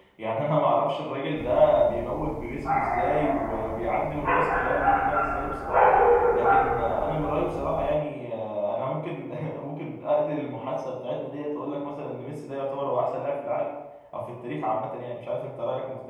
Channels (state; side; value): identical; both; correlation 1.00